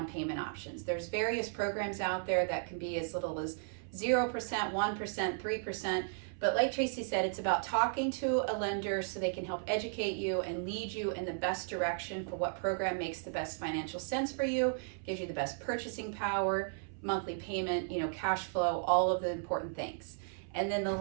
payment options. There's various programs out there that can be as little as 0%, 1%, 3%. But like Tracey said, it's about talking to a lender so they can help educate you and lead you in the best direction for what program makes the best financial sense for you, gives you the best purchasing power, monthly payment, cash flow, all of the important things. And then the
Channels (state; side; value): silent; left; 54 dB below the other